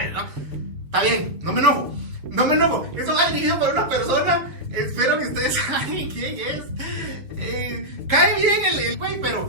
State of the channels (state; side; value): late; left; 6.9 ms